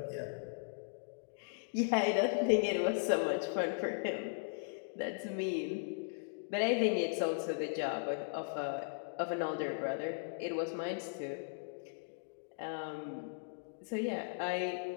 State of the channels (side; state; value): right; silent; digital silence